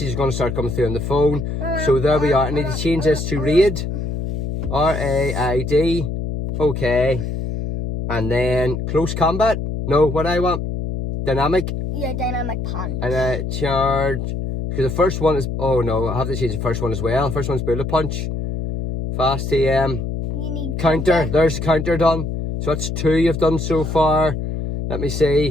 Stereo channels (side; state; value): left; noise; hum, 4 dB below the sound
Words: is going to start coming through on the phone. So there we are. I need to change this to Raid. RAID. Okay. And then close combat. No, what I want. Dynamic. Yeah, dynamic punch. And charge. Because the first one is... Oh no, I have to change the first one as well. The first one's Bullet Punch. Fast TM. You need counter. There's the counter done. So that's 2 you've done so far. Let me